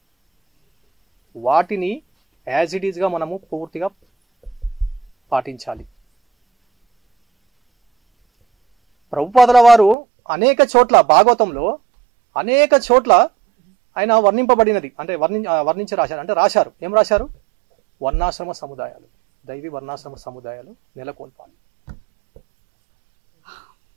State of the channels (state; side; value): drops out; left; at 10.0 s